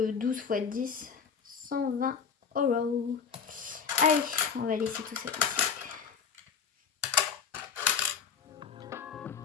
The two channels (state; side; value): quieter; right; 6.5 dB